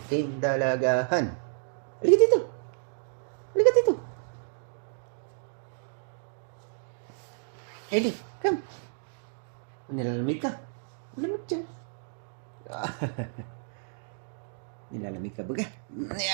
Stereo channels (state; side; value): silent; left; digital silence